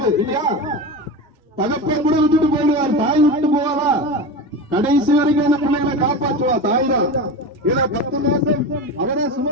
இல்லையா? தகப்பன் கூட விட்டுட்டு போயிடுவார், தாய் விட்டு போவாரா? கடைசி வரைக்கும் அந்த பிள்ளைகளை காப்பாற்றுவா தாய் தான். ஏன்னா 10 மாசம் அவரை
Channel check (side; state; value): both; normal; correlation 0.25